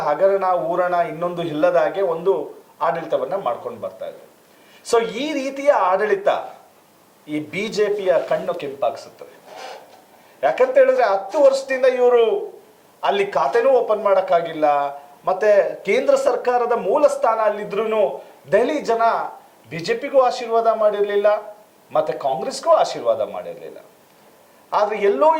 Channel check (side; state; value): both; identical; correlation 1.00